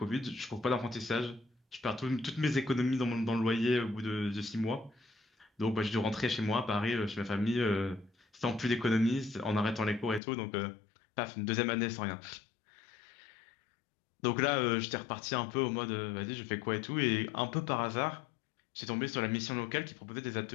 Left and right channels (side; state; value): right; drops out; at 10.2 s